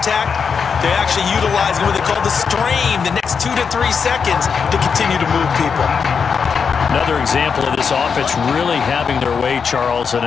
they're actually utilizing what they call the stream, the next 2 to 3 seconds to continue to move people. Another example of this offense really having their way, Charles, and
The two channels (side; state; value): right; quieter; 6.1 dB